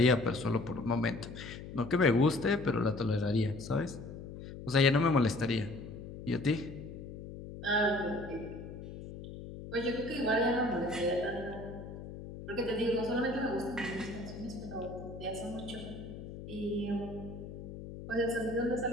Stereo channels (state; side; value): noise; left; hum, 11 dB below the sound